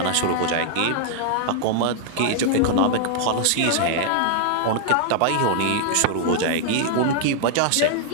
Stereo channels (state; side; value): different; both; correlation 0.00